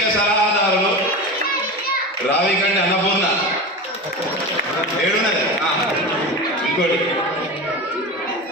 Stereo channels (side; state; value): both; normal; correlation 0.27